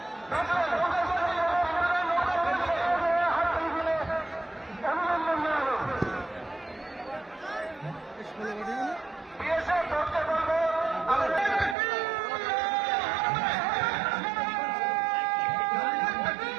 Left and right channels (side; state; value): left; drops out; at 11.8 s